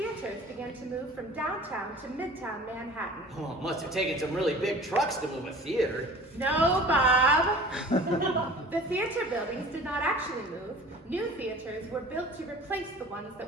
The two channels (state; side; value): normal; both; correlation 0.43